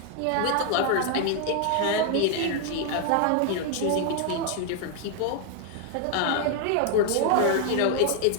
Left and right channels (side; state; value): both; different; correlation 0.00